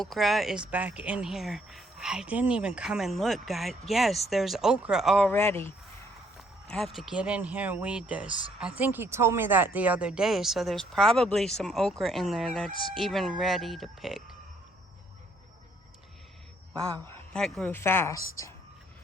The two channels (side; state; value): both; normal; correlation 0.67